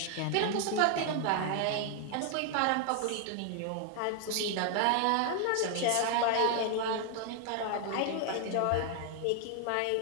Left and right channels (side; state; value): both; different; correlation 0.00